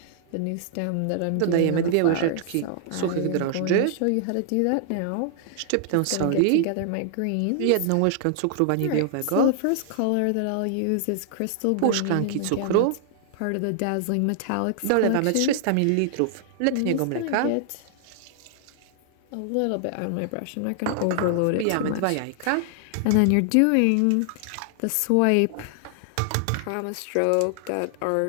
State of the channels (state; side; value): different; both; correlation -0.01